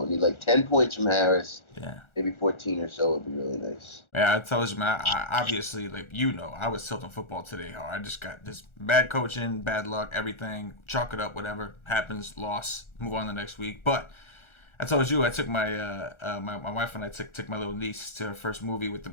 Need like 10 points from Harris. Yeah. Maybe 14 or so would be really nice. Yeah, I told you, man. I obviously, like, you know, I was tilting football today. How I just got this bad coaching, bad luck, everything. Chalk it up, whatever happens, loss, move on the next week. But I told you, I took my my wife and I took my little niece to her first movie with the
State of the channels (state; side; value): late; right; 1.4 ms